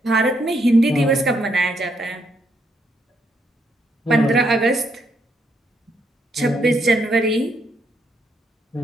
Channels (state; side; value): normal; both; correlation 0.76